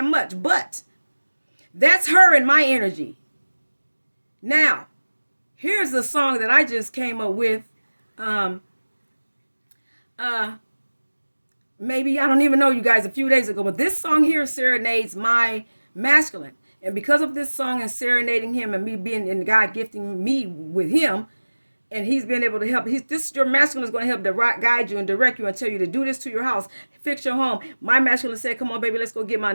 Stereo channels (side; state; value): both; inverted; correlation -1.00